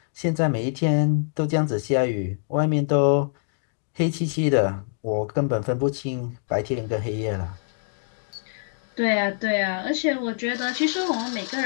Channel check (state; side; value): silent; right; digital silence